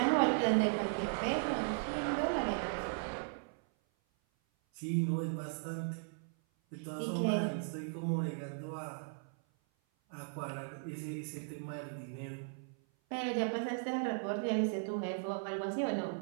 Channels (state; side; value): silent; left; 53 dB below the other